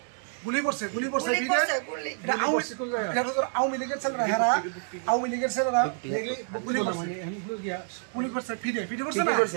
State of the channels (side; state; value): left; silent; 59 dB below the other